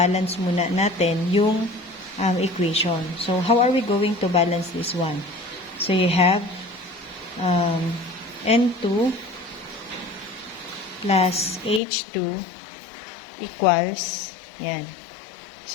muna natin yung equation. So, how are we going to balance this one? So, you have N2 plus H2 equals, yan.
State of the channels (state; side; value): drops out; right; at 11.8 s